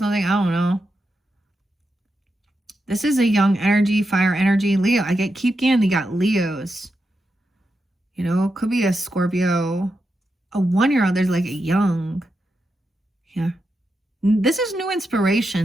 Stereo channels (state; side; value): normal; both; correlation 0.87